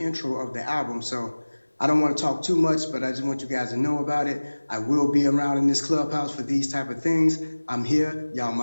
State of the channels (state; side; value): inverted; both; correlation -1.00